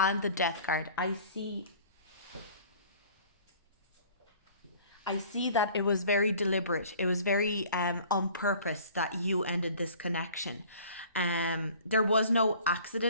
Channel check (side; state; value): both; inverted; correlation -0.49